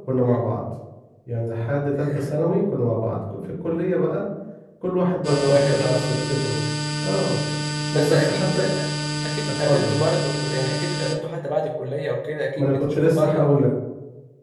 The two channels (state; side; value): identical; both; correlation 1.00